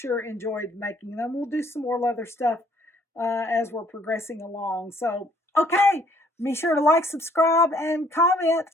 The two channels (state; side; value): normal; both; correlation 0.63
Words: enjoyed making them. We'll do some more leather stuff as we're progressing along. So, okay, be sure to like, subscribe, and comment.